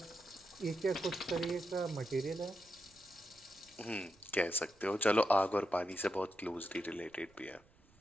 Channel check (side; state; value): right; noise; rumble, 30 dB below the sound